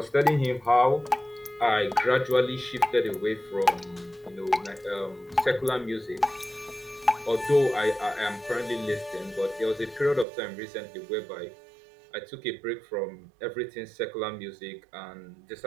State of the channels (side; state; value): left; drops out; at 10.2 s